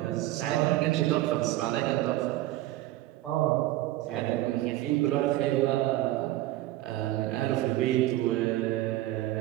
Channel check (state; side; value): quieter; left; 16.2 dB